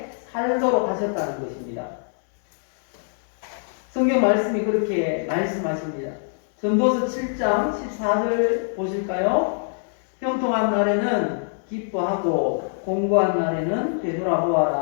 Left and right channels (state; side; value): silent; right; digital silence